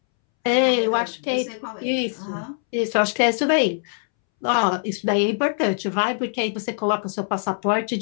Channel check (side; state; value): right; silent; 64 dB below the other